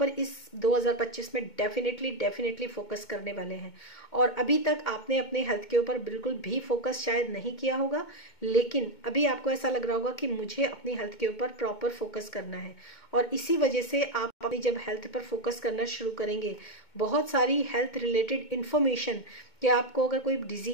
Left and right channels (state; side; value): late; right; 2.2 ms